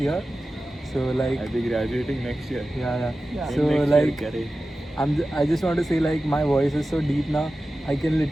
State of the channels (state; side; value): normal; both; correlation 0.94